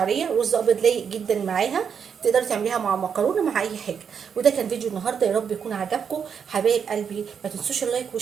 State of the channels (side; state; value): left; quieter; 7.1 dB